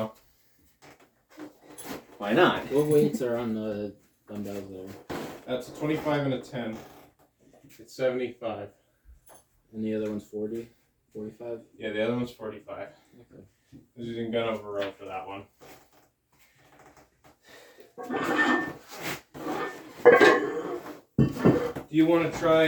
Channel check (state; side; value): identical; both; correlation 1.00